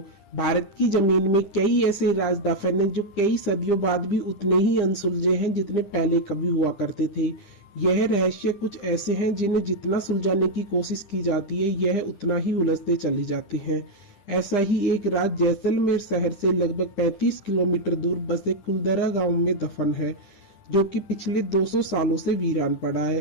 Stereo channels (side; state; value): right; late; 10 ms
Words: भारत की जमीन में कई ऐसे राज दफन हैं जो कई सदियों बाद भी उतने ही अनसुलझे हैं जितने पहले कभी हुआ करते थे। यह रहस्य कुछ ऐसे हैं जिन्हें जितना सुलझाने की कोशिश की जाती है यह उतना ही उलझते चले जाते हैं। ऐसा ही एक राज जैसलमेर शहर से लगभग 35 किलोमीटर दूर बसे कुलधरा गांव में दफन है, जो कि पिछले 200 सालों से वीरान पड़ा